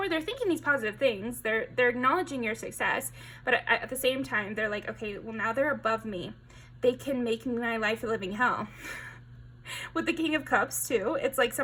they're thinking these positive things. They're acknowledging your success. But at the same time, they're like, okay, well, now they're above me. They can make my life a living hell. With the King of Cups, too, it's like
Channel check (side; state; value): both; identical; correlation 1.00